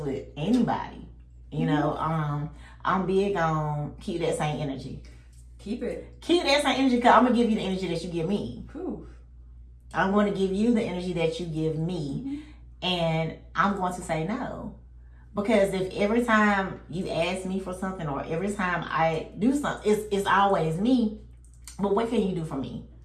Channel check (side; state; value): both; identical; correlation 1.00